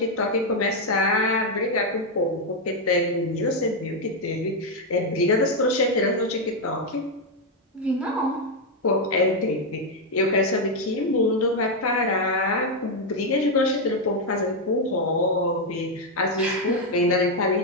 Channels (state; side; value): normal; both; correlation 0.02